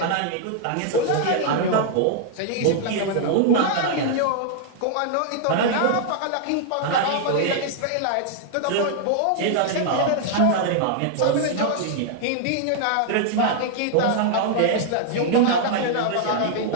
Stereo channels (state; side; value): different; both; correlation -0.01